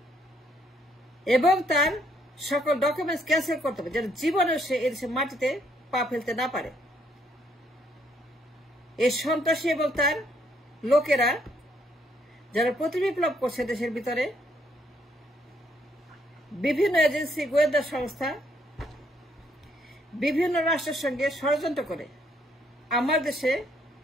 এবং তার সকল ডকুমেন্টস ক্যান্সেল করতে হবে, যেন জীবনেও সে এদেশের মাটিতে পা ফেলতে না পারে। এই সন্ত্রাসী এবং তার লোকেরা যারা প্রতি বিপ্লব করছে দেশের ভিতরে, বিভিন্ন এজেন্সি, গোয়েন্দা সংস্থা, বিভিন্ন রাষ্ট্রের সঙ্গে ষড়যন্ত্র করে আমার দেশে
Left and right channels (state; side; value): normal; both; correlation 0.70